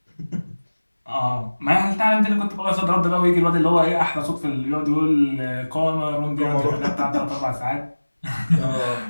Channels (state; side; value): inverted; both; correlation -1.00